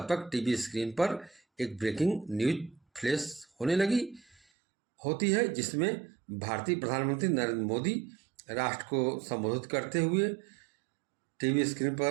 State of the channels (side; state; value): left; drops out; at 4.4 s